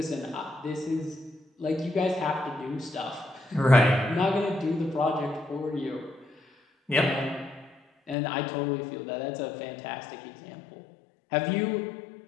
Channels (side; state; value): right; drops out; at 8.2 s